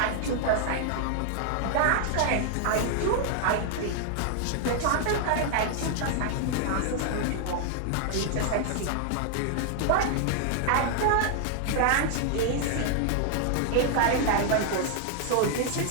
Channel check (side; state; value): both; different; correlation 0.00